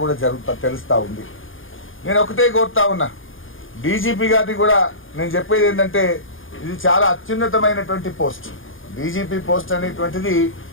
కూడా తెలుస్తూ ఉంది. నేను ఒకటే కోరుతా ఉన్నా, డీజీపీ గారిని కూడా నేను చెప్పేది ఏంటంటే, ఇది చాలా అత్యున్నతమైనటువంటి పోస్ట్. డీజీపీ పోస్ట్ అనేటువంటిది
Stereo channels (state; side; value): late; right; 0.58 ms